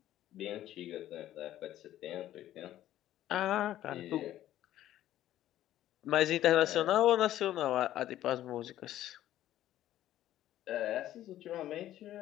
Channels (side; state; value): right; quieter; 13.1 dB